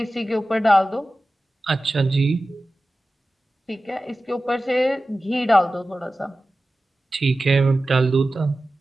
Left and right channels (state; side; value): normal; both; correlation 0.95